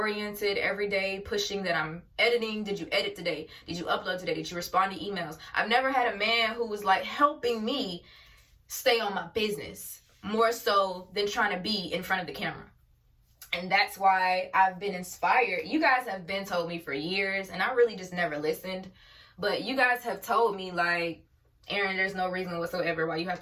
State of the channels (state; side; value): identical; both; correlation 1.00